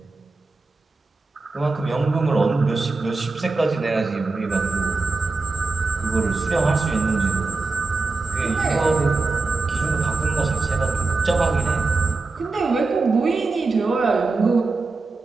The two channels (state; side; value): quieter; left; 3.7 dB